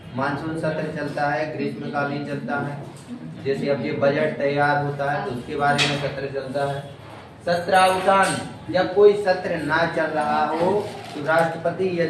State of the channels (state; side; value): identical; both; correlation 1.00